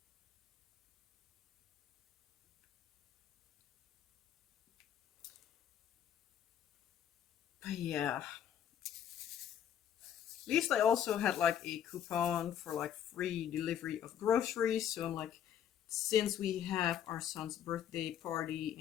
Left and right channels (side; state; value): right; quieter; 9.6 dB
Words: But yeah. At least I also had like a coupon for like free delivery of groceries. So I'm like, since we have our son's birthday party